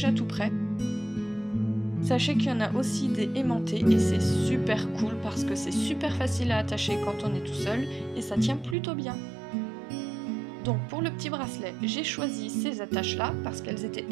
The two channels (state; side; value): drops out; left; at 8.8 s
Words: tout prêts. Sachez qu'il y en a aussi des aimantés et c'est super cool parce que c'est super facile à attacher quand on est tout seul et ça tient plutôt bien. Donc pour le petit bracelet, j'ai choisi ces attaches-là parce qu'elles étaient